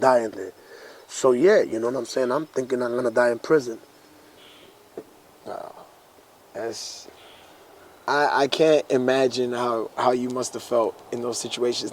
die in there. So, yeah, you know what I'm saying? I'm thinking I'm going to die in prison. I can't imagine how you must have felt in those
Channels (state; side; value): identical; both; correlation 1.00